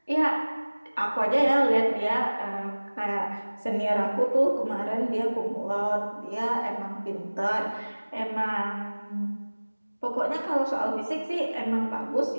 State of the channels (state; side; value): inverted; both; correlation -1.00